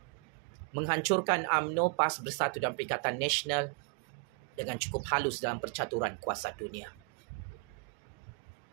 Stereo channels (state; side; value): quieter; left; 36.6 dB